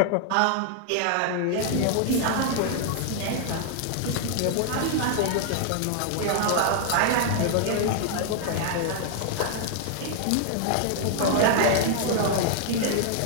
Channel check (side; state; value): both; different; correlation 0.00